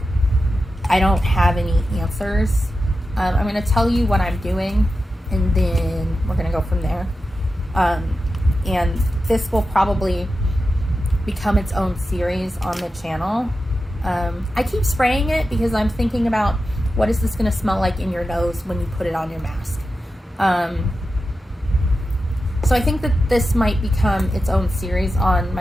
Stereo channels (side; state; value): both; normal; correlation 0.91